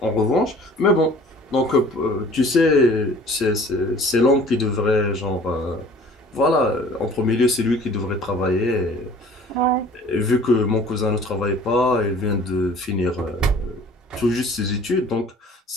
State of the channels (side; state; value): both; normal; correlation 0.49